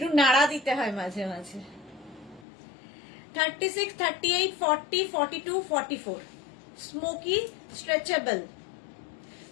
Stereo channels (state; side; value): drops out; right; at 2.5 s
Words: নাড়া দিতে হয় মাঝে মাঝে। 36, 38, 40, 42, 44 স্মোকি স্ট্রেচেবল।